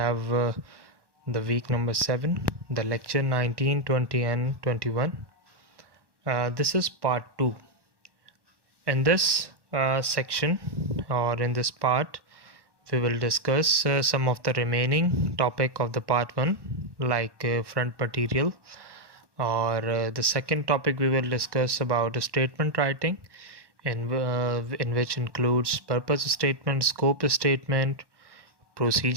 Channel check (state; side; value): late; left; 1.1 ms